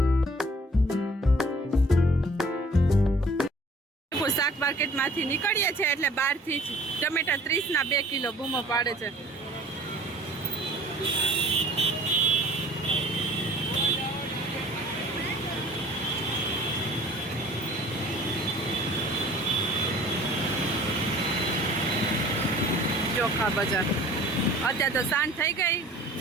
શાક માર્કેટમાંથી નીકળીએ છીએ એટલે બહારથી જ ટમેટા 30 ના 2 કિલો બૂમો પાડે છે. ચોખા બજાર. અત્યારે તો સાંજ થઈ ગઈ,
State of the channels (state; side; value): normal; both; correlation 0.50